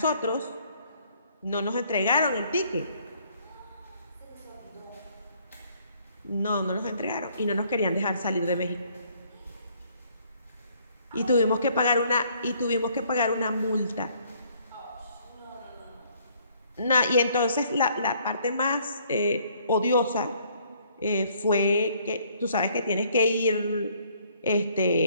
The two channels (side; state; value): both; inverted; correlation -0.63